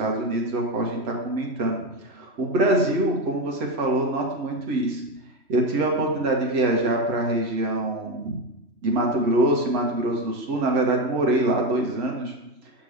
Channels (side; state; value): left; late; 3.1 ms